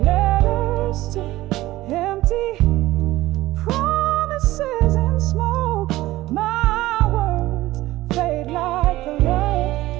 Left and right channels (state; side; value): quieter; left; 17.0 dB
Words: Letters to empty promises and smoke. My words fade like the